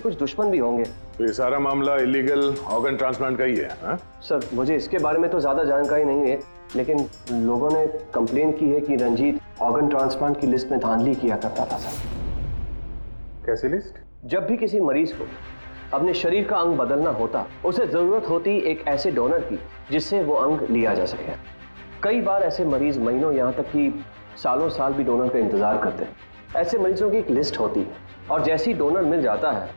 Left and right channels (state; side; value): inverted; both; correlation -1.00